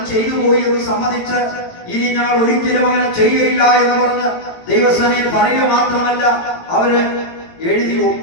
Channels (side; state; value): right; late; 18 ms